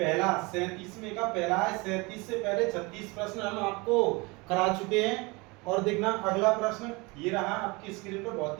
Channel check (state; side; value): quieter; left; 25.9 dB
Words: पहला 37 में का पहला है। 37 से पहले 36 प्रश्न हम आपको करा चुके हैं। और देखना अगला प्रश्न ये रहा आपकी स्क्रीन पर, बहुत